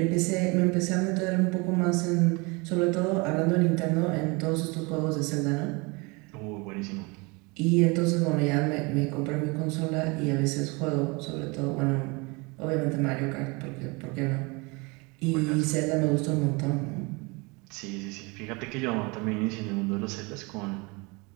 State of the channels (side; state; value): left; quieter; 27.7 dB